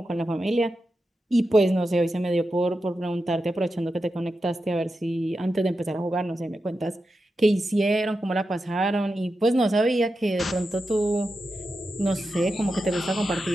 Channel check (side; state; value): both; normal; correlation 0.90